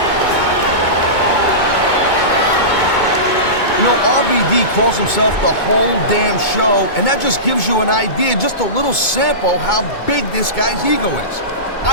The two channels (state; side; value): late; right; 2.2 ms